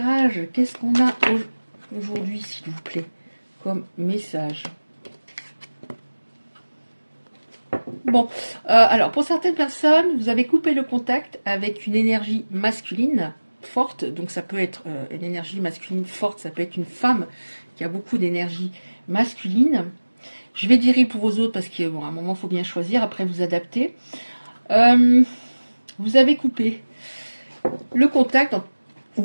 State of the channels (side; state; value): both; inverted; correlation -1.00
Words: Qu'est-ce qu'on a aujourd'hui, s'il vous plaît, comme message? Bon, alors pour certaines personnes, vous avez coupé le contact avec une énergie masculine forte. Donc ça peut être une énergie masculine forte, ça peut être une femme qui a beaucoup d'énergie masculine. Je vais dire pour vos autres parce qu'à un moment, il faut bien choisir, après vous adapter. Vous avez coupé le contact,